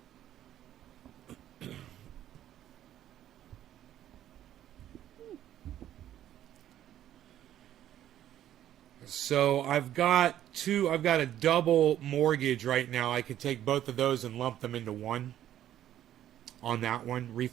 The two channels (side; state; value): left; quieter; 11.7 dB